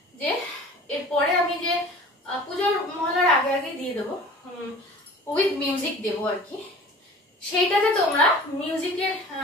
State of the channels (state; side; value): normal; both; correlation 0.43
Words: যে এরপরে আমি যে পুজোর মহলার আগে আগে দিয়ে দেবো, উইথ মিউজিক দেবো আর কি, সেইটাতে তোমরা মিউজিকের